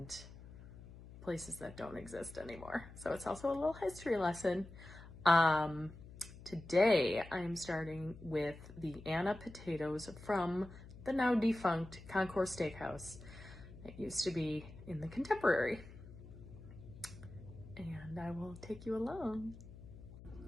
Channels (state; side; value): noise; left; hum, 16 dB below the sound